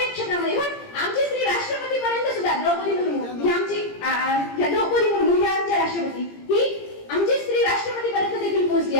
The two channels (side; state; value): right; late; 17 ms